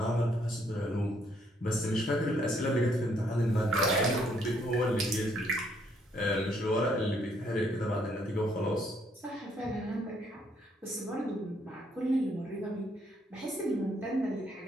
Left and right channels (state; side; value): normal; both; correlation 0.69